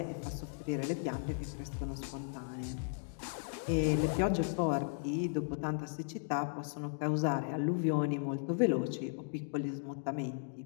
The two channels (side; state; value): right; silent; digital silence